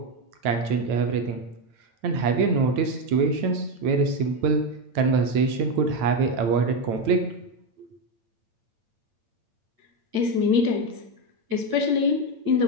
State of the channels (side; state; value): left; late; 8.8 ms